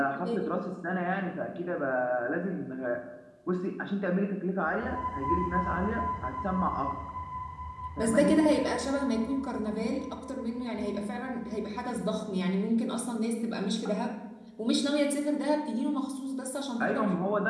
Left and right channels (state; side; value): identical; both; correlation 1.00